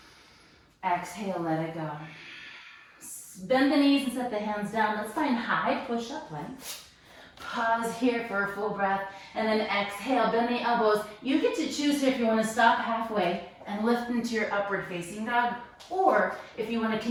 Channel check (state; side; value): identical; both; correlation 1.00